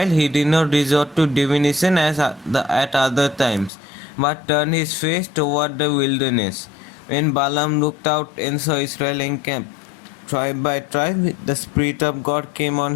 he did not resort to divination as at other times, but turned his face toward the wilderness. When Balaam looked out and saw Israel encamped tribe by tribe, the Spirit of God came on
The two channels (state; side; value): drops out; right; at 3.7 s